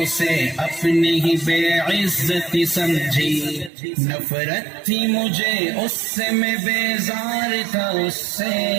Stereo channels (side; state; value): left; drops out; at 3.7 s